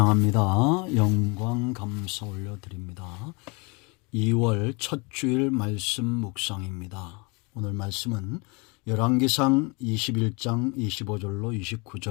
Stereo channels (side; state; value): right; quieter; 29.8 dB